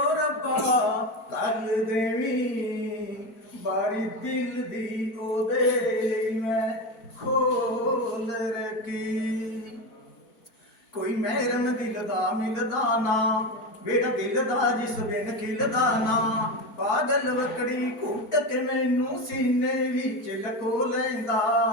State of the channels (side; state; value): right; late; 4.5 ms